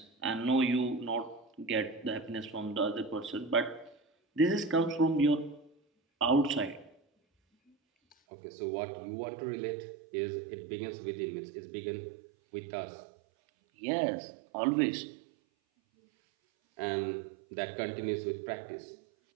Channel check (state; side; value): drops out; left; at 8.2 s